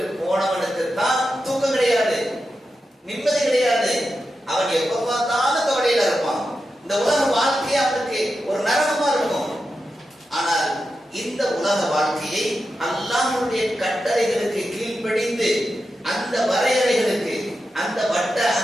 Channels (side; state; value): both; normal; correlation 0.90